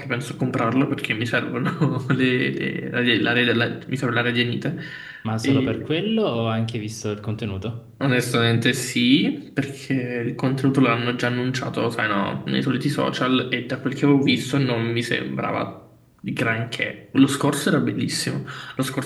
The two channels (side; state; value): both; identical; correlation 1.00